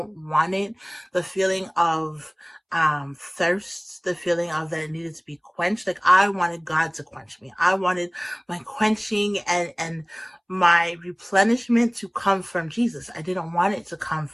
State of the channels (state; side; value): identical; both; correlation 1.00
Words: want it. The feeling of thirst, the feeling of that it needed to be quenched. Like, I wanted God to quench me. I wanted my quenching and my replenishment to come from Jesus. I didn't want it to come